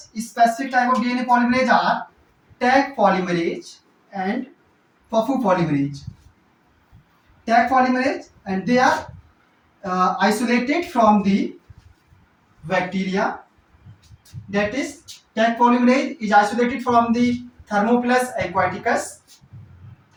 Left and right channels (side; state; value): both; identical; correlation 1.00